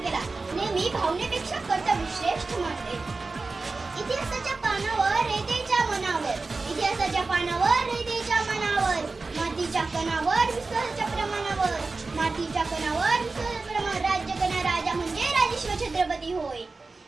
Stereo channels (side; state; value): left; quieter; 3.8 dB